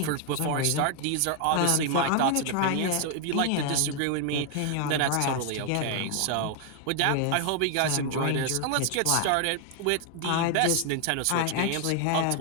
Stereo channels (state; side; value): different; both; correlation 0.00